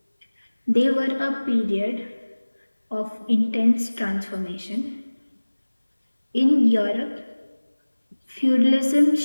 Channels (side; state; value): both; inverted; correlation -1.00